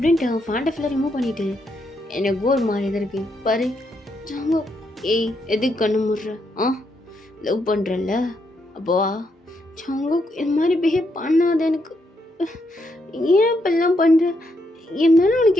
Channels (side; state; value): both; normal; correlation 0.78